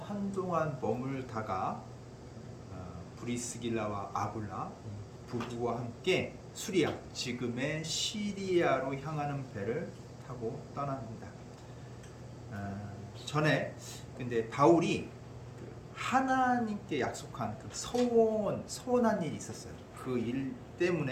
한동안 머물다가 브리스길라와 아굴라 부부와 함께 수리아 지금의 시리아로 향하는 배를 타고 떠납니다. 전에 근데 바울이 하나님께 약속한 그 서원한 일이 있었어요. 그 일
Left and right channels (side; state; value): both; identical; correlation 1.00